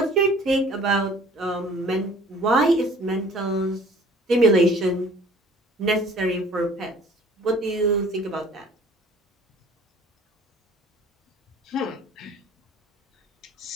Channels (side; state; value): both; normal; correlation 0.51